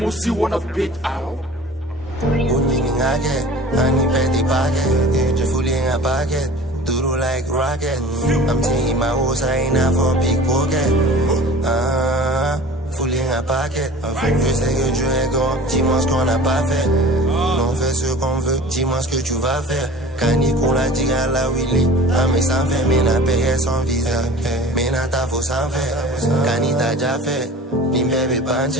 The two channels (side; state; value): both; normal; correlation 0.42